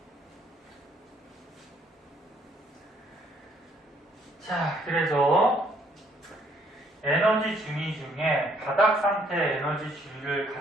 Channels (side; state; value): both; normal; correlation 0.66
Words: 자, 그래서 에너지 중위 중에 바닥 상태 에너지 중위를